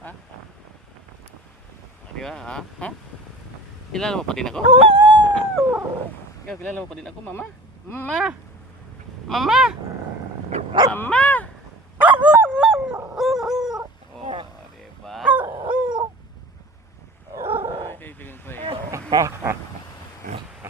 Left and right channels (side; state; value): both; normal; correlation 0.40